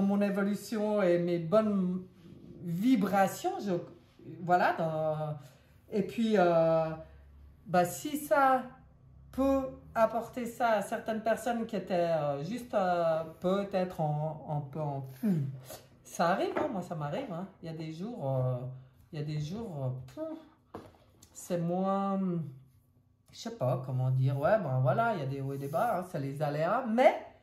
évolution et mes bonnes vibrations. Voilà. Et puis, si ça peut apporter ça à certaines personnes qui étaient juste peut-être un peu en... Ça arrive, hein, moi ça m'arrive. Hein. Il y a des jours, c'est moins, je sais pas comment dire, ouais, ben voilà, il y a des hauts et des bas, hein, c'est les aléas, mais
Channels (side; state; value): both; identical; correlation 1.00